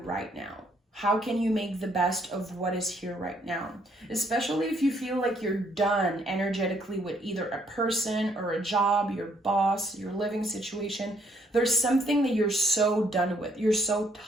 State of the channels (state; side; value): normal; both; correlation 0.69